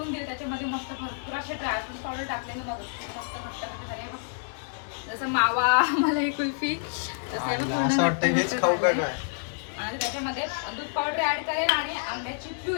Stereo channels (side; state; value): right; silent; digital silence